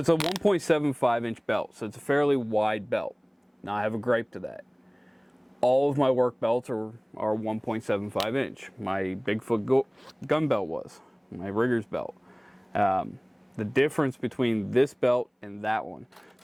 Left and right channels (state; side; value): identical; both; correlation 1.00